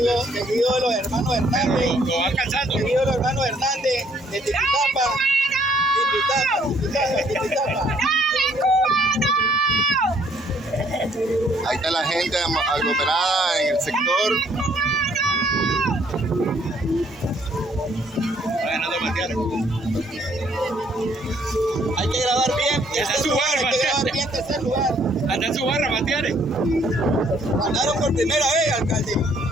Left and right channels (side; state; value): both; normal; correlation 0.65